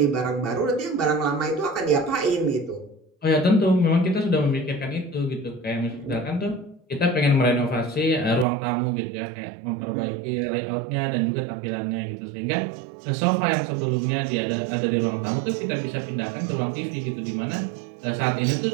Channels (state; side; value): drops out; left; at 8.5 s